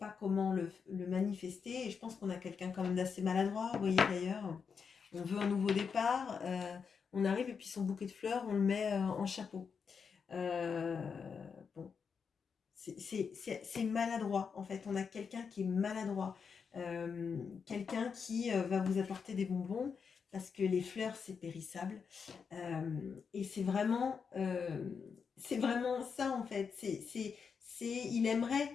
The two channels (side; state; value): right; quieter; 6.0 dB